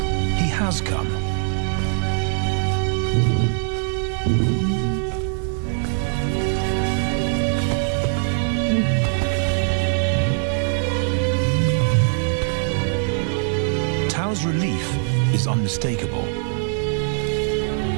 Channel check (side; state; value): left; silent; digital silence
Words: He has come. Tao's relief is unmistakable.